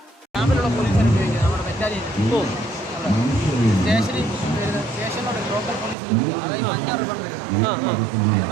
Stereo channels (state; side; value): drops out; left; at 6.0 s